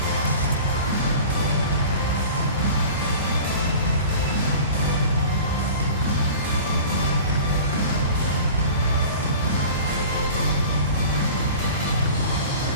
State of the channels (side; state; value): both; inverted; correlation -0.40